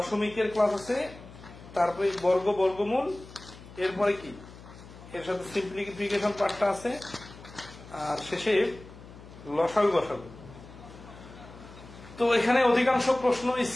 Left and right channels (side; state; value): left; noise; hum, 18 dB below the sound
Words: ক্লাস আছে, তারপরে বর্গ বর্গমূল, এরপরে কি এর সাথে সিম্পলিফিকেশন পার্টটা আছে, আর শেষে লসাগু গসাগু। তো এখানে অধিকাংশ প্রশ্ন